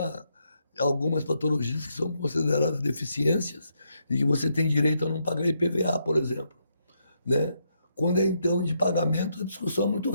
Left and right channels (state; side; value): inverted; both; correlation -0.78